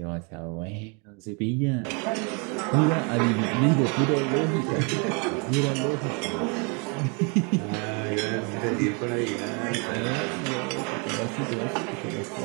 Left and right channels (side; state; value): left; quieter; 33.9 dB